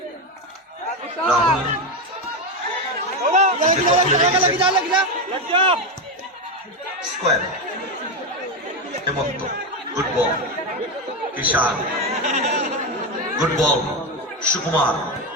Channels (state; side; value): normal; both; correlation 0.12